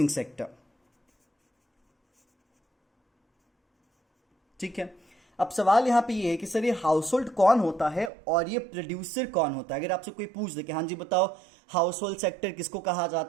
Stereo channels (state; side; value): drops out; left; at 8.1 s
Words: सेक्टर, ठीक है। अब सवाल यहां पे ये है कि सर ये हाउस होल्ड कौन होता है और ये प्रोड्यूसर कौन होता है। अगर आपसे कोई पूछ दे कि हाँ जी बताओ हाउस होल्ड सेक्टर किसको कहा